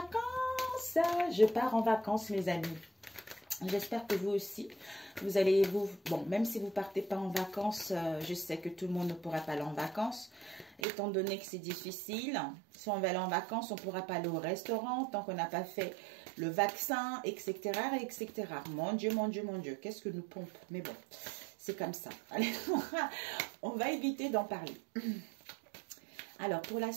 Je pars en vacances, mes amis. J'espère que vous aussi, vous allez bon, même si vous partez pas en vacances, je sais que tout le monde ne pourra pas aller en vacances, étant donné que c'est difficile. Si on va aller en vacances, on ne pourra pas aller au restaurant tant qu'on n'a pas fait le vaccin, etc., etc. Mon Dieu, mon Dieu, mon Dieu, qu'est-ce que nous pompe. Mais bon, c'est comme ça. Allez, on va éviter d'en parler. Alors, pour la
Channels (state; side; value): drops out; left; at 10.8 s